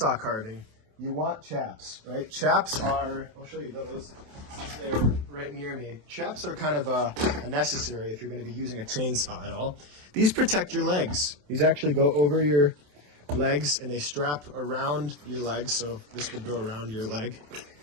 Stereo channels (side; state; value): left; late; 27 ms